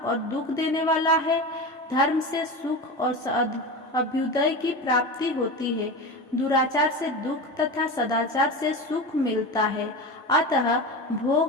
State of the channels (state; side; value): normal; both; correlation 0.25